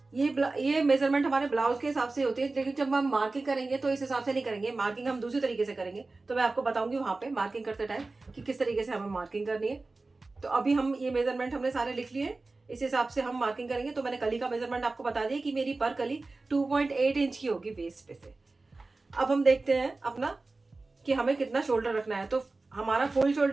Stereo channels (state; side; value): quieter; left; 3.4 dB